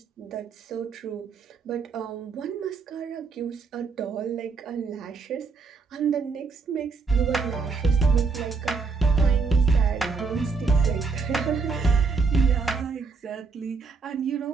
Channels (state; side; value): quieter; left; 4.6 dB